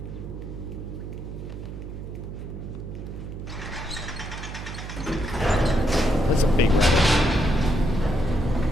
That's a big rabbit.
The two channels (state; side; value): noise; right; hum, 8 dB below the sound